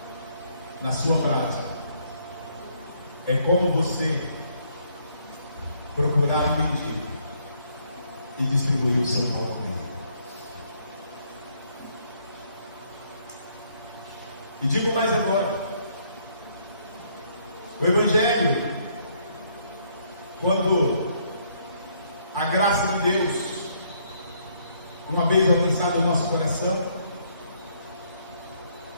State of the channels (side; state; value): both; inverted; correlation -0.68